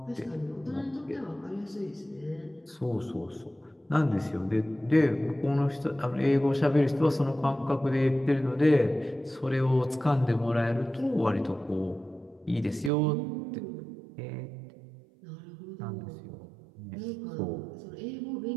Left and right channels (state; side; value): drops out; left; at 12.9 s